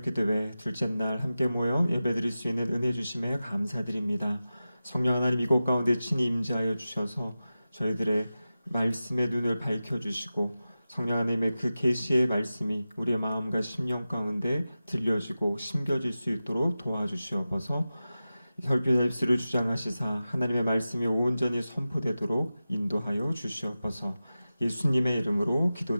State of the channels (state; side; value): inverted; both; correlation -0.94